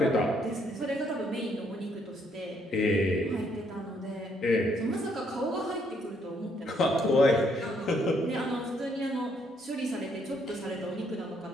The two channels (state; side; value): normal; both; correlation 0.70